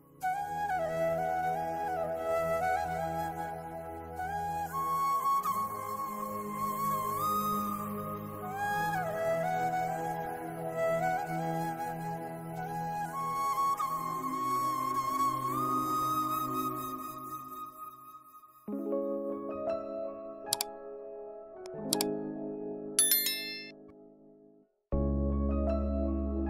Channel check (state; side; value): identical; both; correlation 1.00